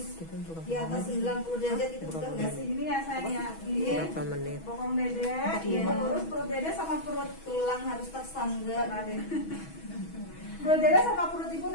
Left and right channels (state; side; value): late; right; 6.2 ms